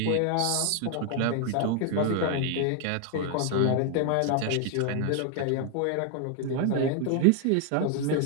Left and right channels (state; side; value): different; both; correlation 0.00